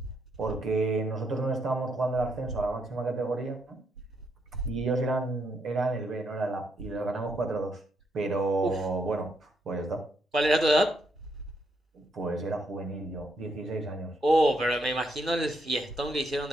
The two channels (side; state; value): both; normal; correlation 0.76